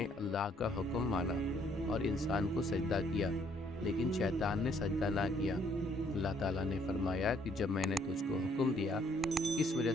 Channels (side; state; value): both; normal; correlation 0.66